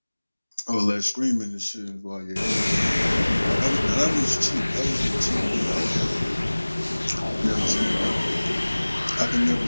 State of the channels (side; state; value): both; inverted; correlation -1.00